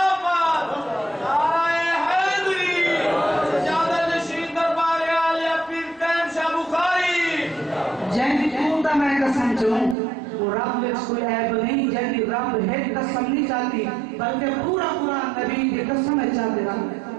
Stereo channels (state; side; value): drops out; left; at 10.0 s